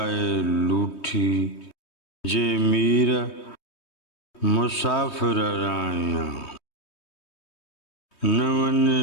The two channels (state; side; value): late; right; 3.2 ms